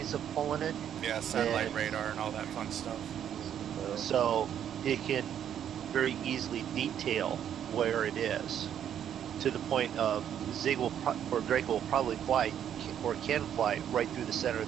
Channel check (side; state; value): left; quieter; 9.6 dB